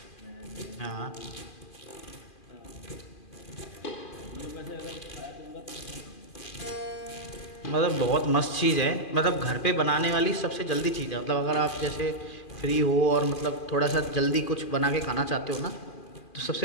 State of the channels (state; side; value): late; right; 2.4 ms